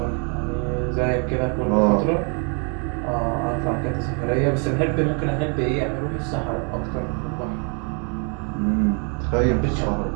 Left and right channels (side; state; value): left; quieter; 37.9 dB